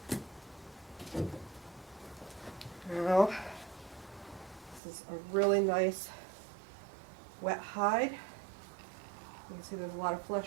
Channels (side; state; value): left; drops out; at 4.8 s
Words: Now, this is a really nice wet hide. You can see there's a lot of